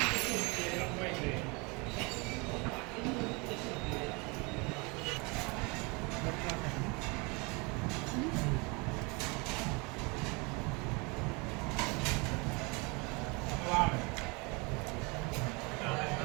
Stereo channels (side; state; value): left; quieter; 28.8 dB